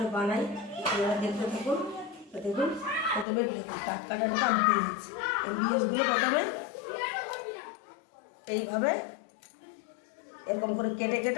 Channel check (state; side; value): drops out; right; at 3.2 s